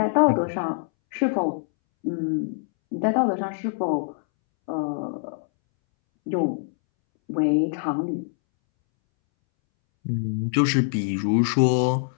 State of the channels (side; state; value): right; silent; 62 dB below the other